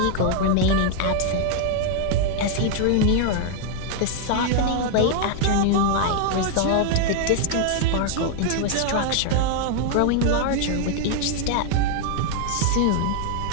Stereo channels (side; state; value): both; different; correlation 0.00